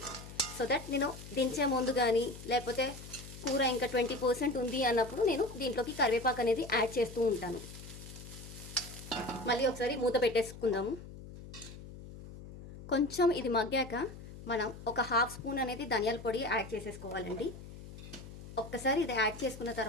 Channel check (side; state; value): left; noise; hum, 14 dB below the sound